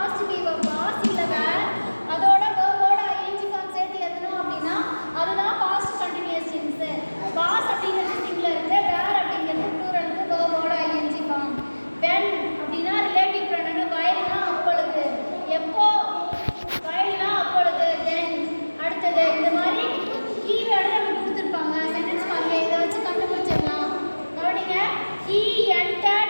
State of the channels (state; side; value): inverted; both; correlation -1.00